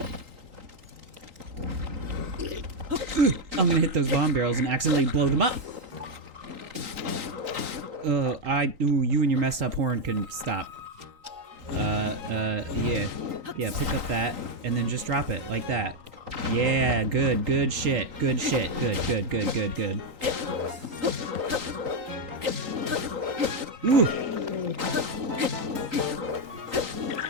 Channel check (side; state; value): left; late; 3.9 ms